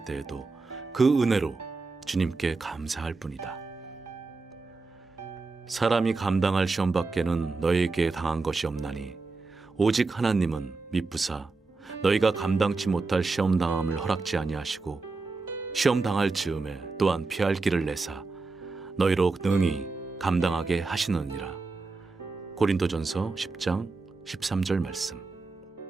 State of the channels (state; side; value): quieter; left; 3.9 dB